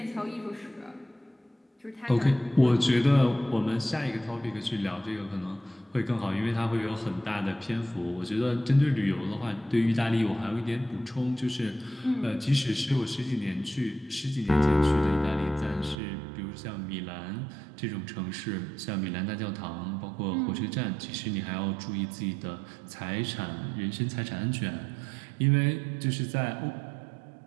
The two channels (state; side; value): drops out; left; at 16.0 s